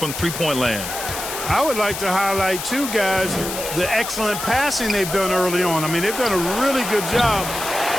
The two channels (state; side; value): noise; left; hiss, 7 dB below the sound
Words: three-point land. I would like to highlight, too, guys, the excellent passing they've done early on. I mean, they've done a really good job